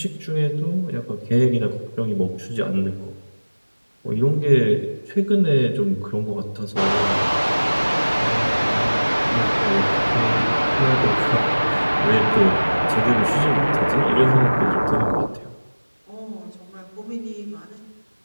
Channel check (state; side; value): inverted; both; correlation -1.00